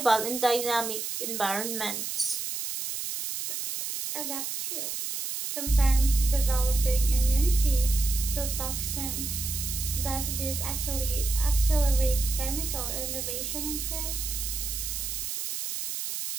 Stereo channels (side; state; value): right; noise; hiss, 4 dB below the sound